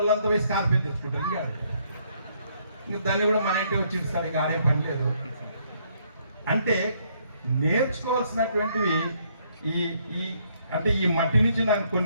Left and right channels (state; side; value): inverted; both; correlation -0.70